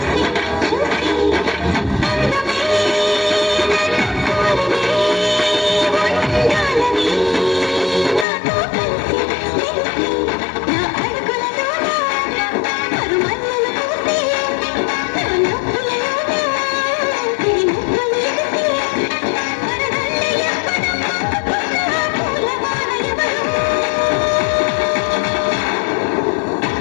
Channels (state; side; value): drops out; right; at 8.2 s